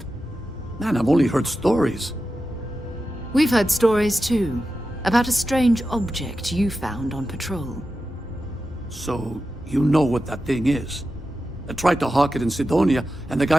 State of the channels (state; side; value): normal; both; correlation 0.92